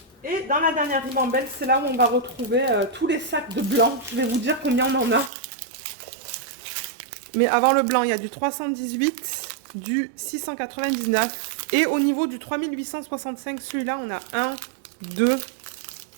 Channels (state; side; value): drops out; left; at 5.3 s